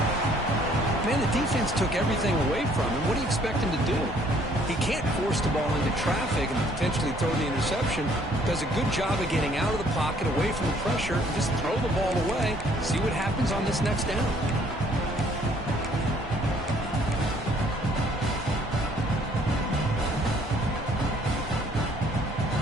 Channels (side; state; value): both; normal; correlation 0.61